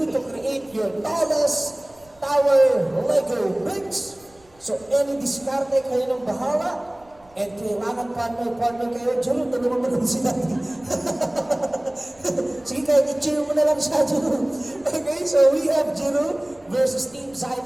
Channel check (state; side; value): noise; right; rumble, 30 dB below the sound